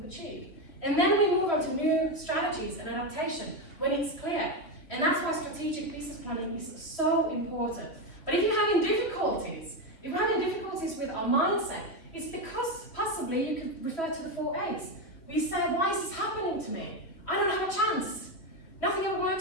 achieved. And then we move on to new strategies and adaptation when it's clear. And that's why strategic business planning is so important. But if you're having difficulties, with our mindset, it's because possibly you could refer to the 4 A's. We say, why is this happening to me? I don't have a chance. Nothing ever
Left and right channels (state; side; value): late; right; 2.8 ms